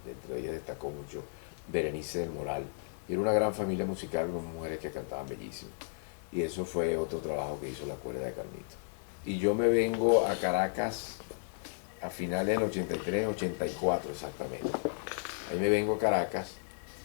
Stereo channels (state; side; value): silent; right; digital silence